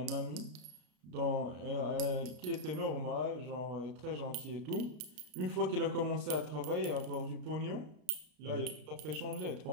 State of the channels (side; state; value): left; late; 33 ms